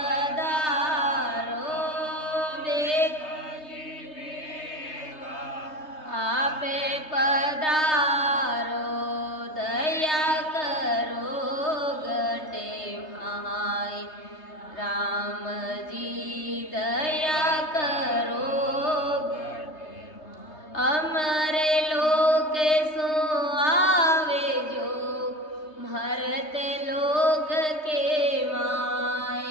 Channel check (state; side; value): late; right; 3.3 ms